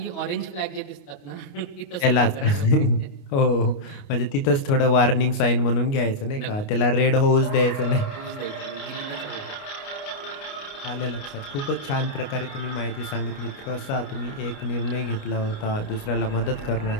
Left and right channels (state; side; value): late; right; 29 ms